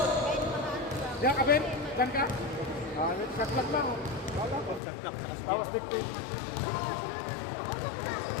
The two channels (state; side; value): drops out; right; at 4.8 s